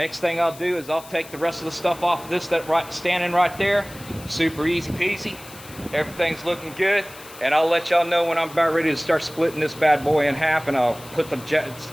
thing I'll do is I'll take the rest of the stuff off of this standing right there. Super easy peasy. Everything's looking good. And I'll let y'all know when I'm about ready to start splitting this bad boy in half, and I'll put the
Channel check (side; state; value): left; noise; hiss, 18 dB below the sound